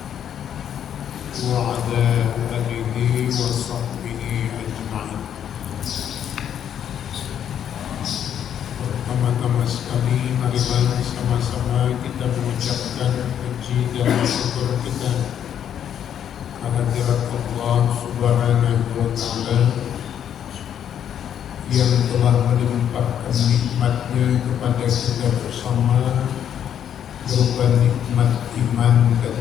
wa ala alihi wa sahbihi ajma'in. Pertama-tama sekali marilah sama-sama kita mengucapkan puji dan syukur kita kehadirat Allah Subhanahu wa Ta'ala yang telah melimpahkan nikmatnya kepada kita bersama berupa nikmat iman dan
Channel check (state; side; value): quieter; right; 9.4 dB